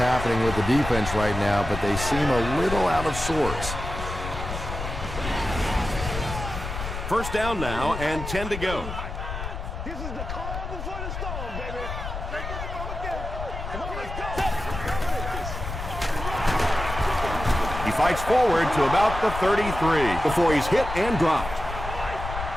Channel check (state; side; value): noise; left; rumble, 7 dB below the sound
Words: with the defense right now, but they seem a little out of sorts. First down now and 10 to go. This is the calm before the storm, baby. Come on, let's go. He fights forward to about the 33 before he's hit and dropped.